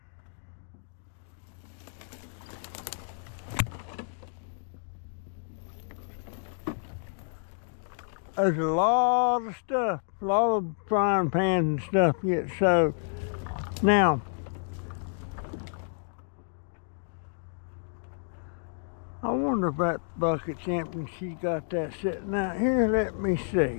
There's a lot of stuff, a lot of frying pans and stuff get soaked. Now, I wonder if that bucket's empty and she's got that sitting out here. Let me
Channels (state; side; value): silent; right; digital silence